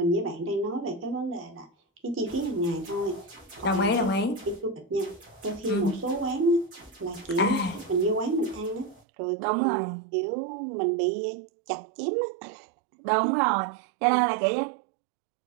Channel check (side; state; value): left; drops out; at 9.0 s